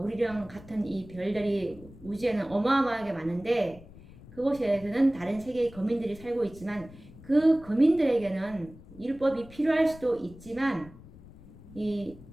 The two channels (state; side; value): noise; left; rumble, 20 dB below the sound